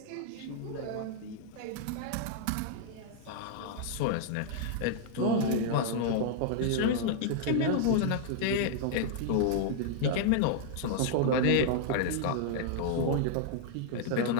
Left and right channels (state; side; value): different; both; correlation -0.01